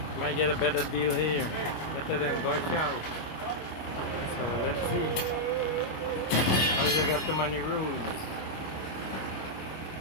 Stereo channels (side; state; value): right; late; 26 ms